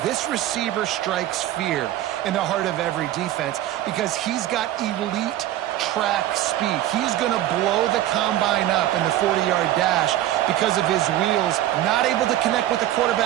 This receiver strikes fear in the heart of every defense because he's got elite track speed. He's going to blow the combine up in the 40-yard dash because of his wheels. Not able to connect with the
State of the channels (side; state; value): left; quieter; 13.6 dB